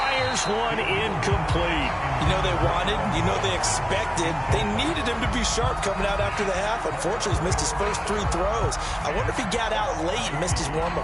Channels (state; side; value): identical; both; correlation 1.00